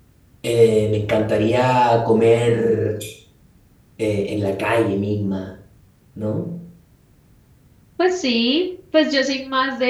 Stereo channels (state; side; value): identical; both; correlation 1.00